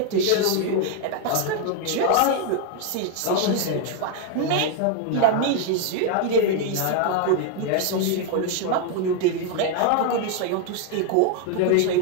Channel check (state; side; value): different; both; correlation 0.00